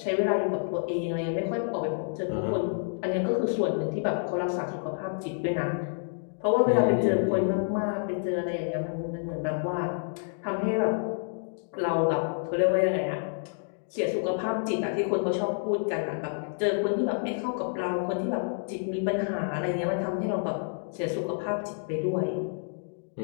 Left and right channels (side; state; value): right; silent; digital silence